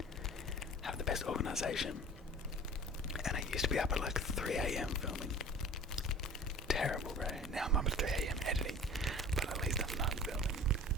have the best organisation, and I used to be up at like 3 AM filming. Terrible, bro. Now I'm up at 3 AM editing, but at least I'm not filming.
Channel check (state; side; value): normal; both; correlation 0.42